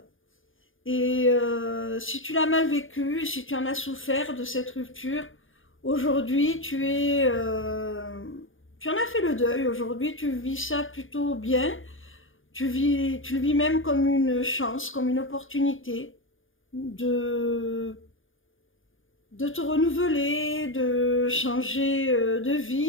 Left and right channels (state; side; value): late; right; 0.58 ms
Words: Et si tu l'as mal vécu, si tu en as souffert de cette rupture, aujourd'hui tu en as fait le deuil. Aujourd'hui, tu vis ça plutôt bien. Tu le vis même comme une chance, comme une opportunité de, de te renouveler, de changer de